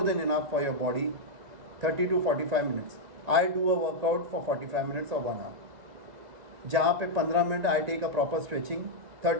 than enough for your body. 30 to 45 minutes. I do a workout for 45 minutes or 1 hour. जहाँ पे 15 minute I take a proper stretching,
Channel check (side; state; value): left; late; 1.9 ms